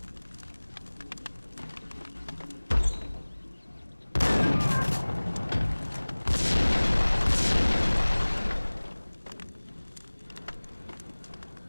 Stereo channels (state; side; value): inverted; both; correlation -1.00